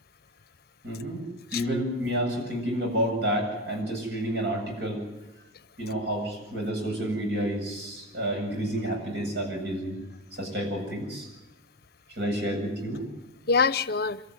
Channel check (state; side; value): normal; both; correlation 0.19